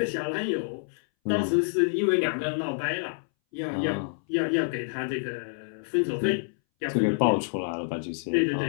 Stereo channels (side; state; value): right; silent; 60 dB below the other